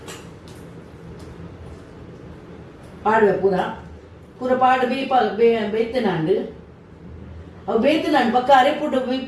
ಪಾಡುವೆ ಪೂರ ಪಾಡು ಬೇಯ್ತನಾಂಡು ಅವು ಬೇಯ್ತನಾಂಡು ಪಕ್ಕ ಅರೆಪುಟ್ಟು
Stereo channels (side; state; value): both; identical; correlation 1.00